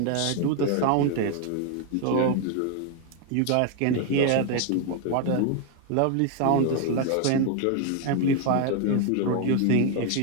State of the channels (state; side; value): different; both; correlation 0.01